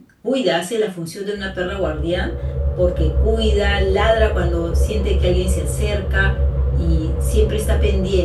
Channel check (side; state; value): both; identical; correlation 1.00